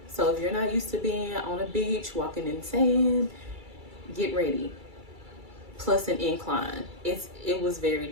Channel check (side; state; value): left; late; 2.3 ms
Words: So if you're not used to being on a beach walking in sand, get ready. Plus an incline. It was very